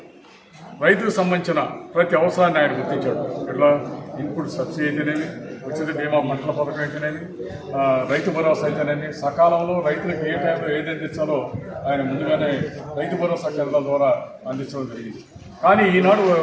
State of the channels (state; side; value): identical; both; correlation 1.00